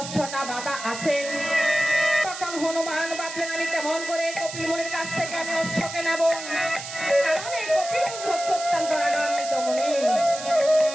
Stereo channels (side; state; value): right; noise; hiss, 9 dB below the sound